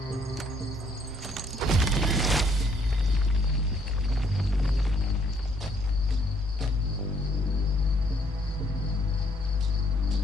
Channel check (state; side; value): normal; both; correlation 0.67